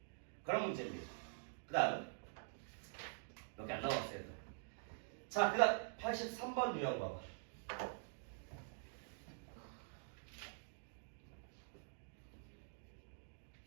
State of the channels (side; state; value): left; silent; digital silence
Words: 그런 문제입니다. 그 다음 몇 개 안 남았어요. 자, 그 다음 83번 유형 봐봐.